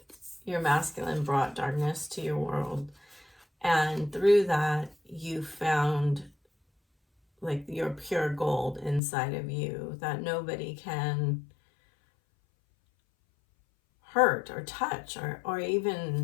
your masculine brought darkness to your world. And through that, you found like your pure gold inside of you that nobody can hurt or touch or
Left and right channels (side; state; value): right; drops out; at 9.0 s